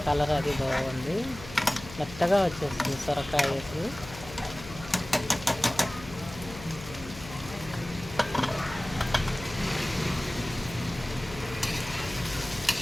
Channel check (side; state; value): left; noise; hum, 14 dB below the sound